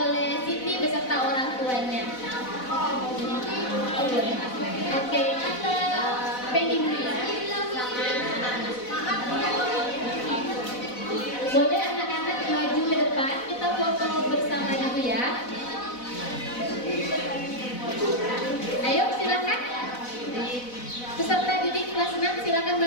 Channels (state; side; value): late; right; 4.0 ms